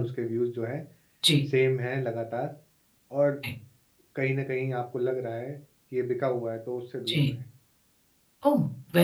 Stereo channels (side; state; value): both; identical; correlation 1.00